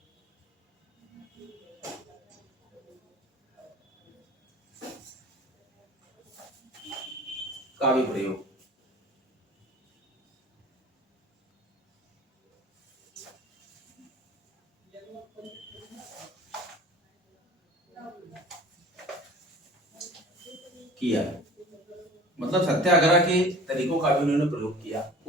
का भी प्रयोग किया। मतलब सत्याग्रह के तरीकों का भी उन्होंने प्रयोग किया।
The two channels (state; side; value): normal; both; correlation 0.43